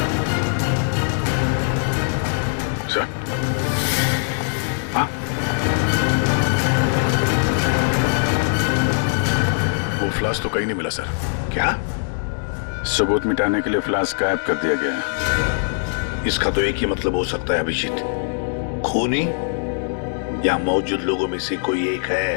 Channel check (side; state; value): right; silent; digital silence